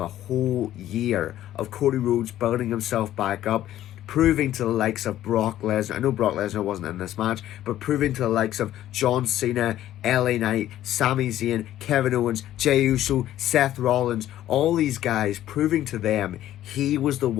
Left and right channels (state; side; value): quieter; right; 12.9 dB